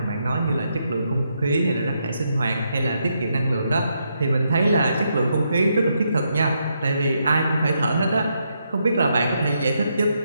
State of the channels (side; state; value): both; inverted; correlation -0.79